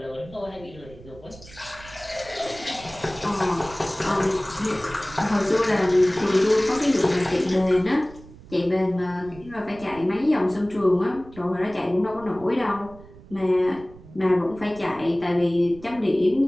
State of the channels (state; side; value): noise; right; rumble, 20 dB below the sound